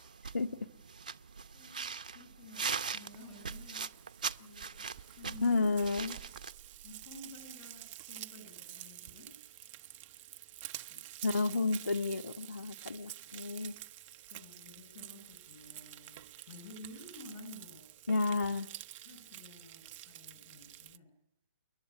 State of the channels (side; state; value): both; inverted; correlation -0.70